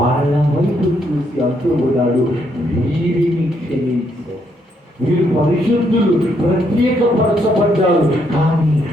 వైపు చూసి అంటూ ఉన్నాడు, వీరిని క్షమించు, వీరు పరిశుద్ధులు, ప్రత్యేకపరచబడ్డారు, కానీ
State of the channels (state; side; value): normal; both; correlation 0.74